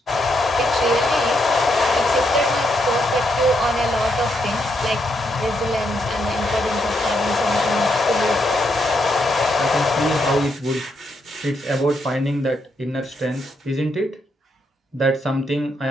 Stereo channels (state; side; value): normal; both; correlation 0.79